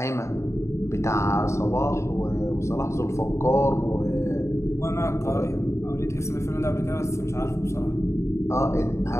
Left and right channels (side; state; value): right; late; 0.14 ms